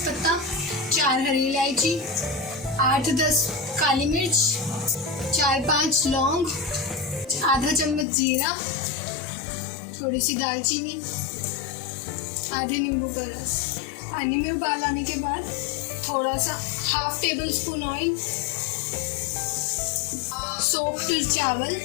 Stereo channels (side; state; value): right; drops out; at 8.1 s